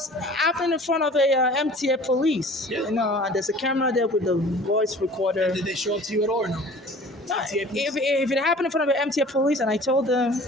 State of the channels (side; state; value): both; normal; correlation 0.46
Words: happening in front of a MTA police. Yeah. And there's a camera there with the voice recorder. Did they show up to you at all or no? If it happened in front of an MTA police and I told them,